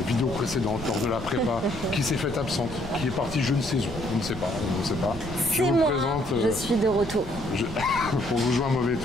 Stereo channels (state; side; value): noise; left; rumble, 13 dB below the sound